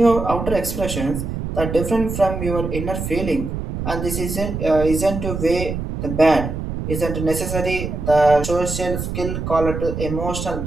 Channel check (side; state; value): right; noise; rumble, 5 dB below the sound